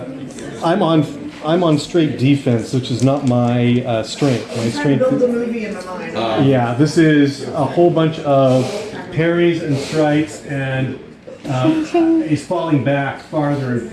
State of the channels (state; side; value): identical; both; correlation 1.00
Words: I'm on straight defense, which is not my strength. My I'm trying to strength. build the movie in my mind. Yeah, this is a whole bunch of parries and strikes, and he's falling back farther and